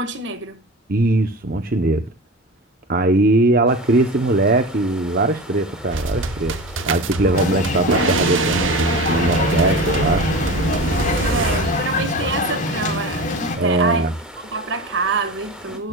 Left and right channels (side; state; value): both; normal; correlation 0.30